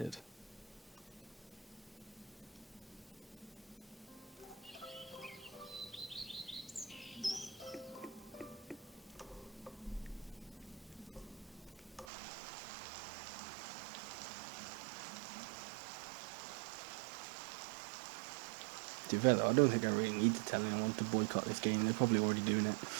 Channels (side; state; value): left; drops out; at 12.1 s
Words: To be fair though, I don't think I really need to tell anyone to boycott this game. They're probably already doing it.